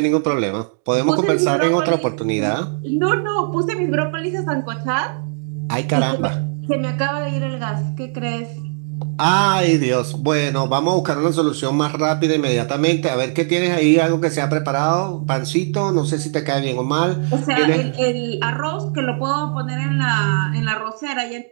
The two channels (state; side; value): silent; left; digital silence